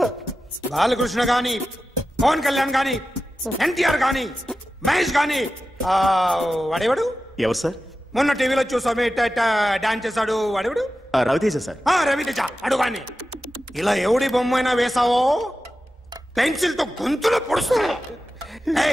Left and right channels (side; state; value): both; normal; correlation 0.93